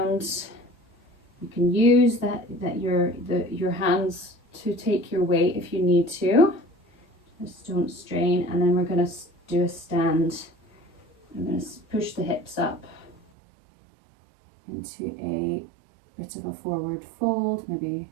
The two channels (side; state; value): left; drops out; at 13.2 s